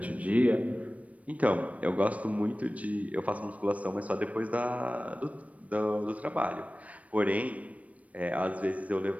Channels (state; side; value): late; left; 0.067 ms